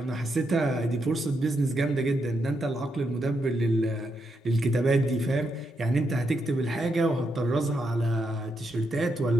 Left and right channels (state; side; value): normal; both; correlation 0.81